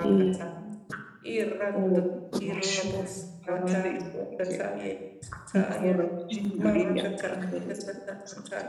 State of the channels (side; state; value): both; identical; correlation 1.00